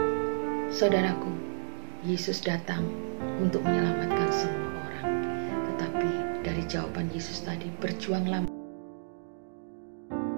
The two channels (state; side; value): silent; left; digital silence